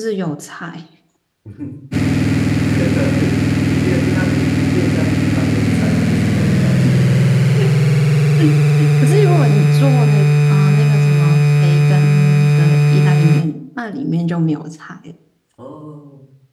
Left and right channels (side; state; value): both; identical; correlation 1.00